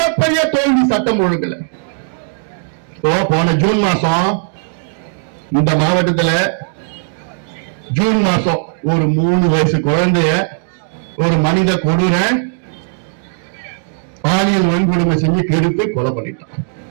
தோல்வி. சட்டம் ஒழுங்குல போன ஜூன் மாசம் இந்த மாவட்டத்தில் ஜூன் மாசம் ஒரு 3 வயசு குழந்தைய ஒரு மனித கொடூர பாலியல் வன்கொடுமை செஞ்சு கெடுத்து கொலை பண்ணிட்டான்.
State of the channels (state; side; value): silent; left; digital silence